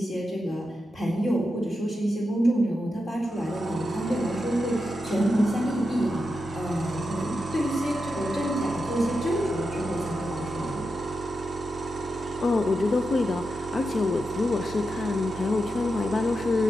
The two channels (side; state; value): both; normal; correlation 0.88